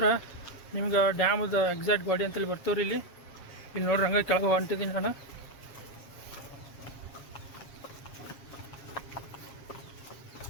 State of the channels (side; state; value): right; late; 7.1 ms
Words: ನಿಮ್ಗೆ ಡ್ಯಾಮದ ಎಕ್ಸಾಕ್ಟ್ ಗಾಡಿ ಅಂತೇಳಿ ಬರ್ತೇವ್ರಿ. ಇಲ್ಲಿ ನೋಡ್ರಿ ಹಂಗೆ ಕೆಳಗೆ ಹೊಂಟಿದ್ದೀನಿ ನಾನು.